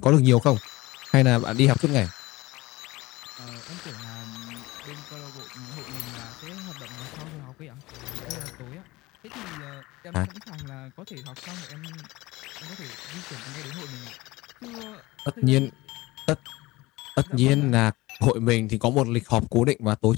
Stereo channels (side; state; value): right; quieter; 20.3 dB